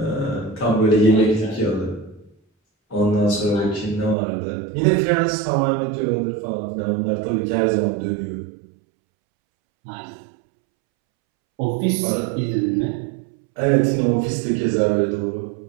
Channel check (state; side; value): drops out; left; at 4.2 s